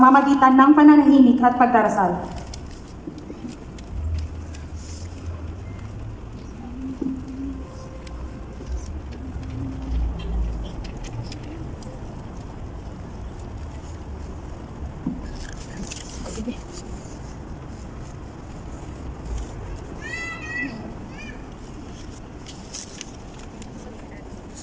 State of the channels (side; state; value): both; identical; correlation 1.00